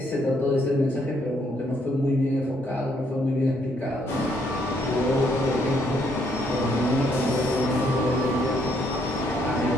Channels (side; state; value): both; normal; correlation 0.71